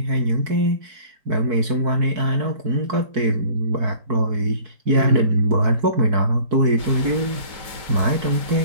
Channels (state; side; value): late; left; 4.6 ms